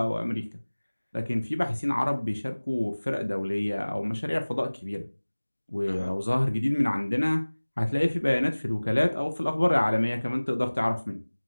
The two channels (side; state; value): both; inverted; correlation -1.00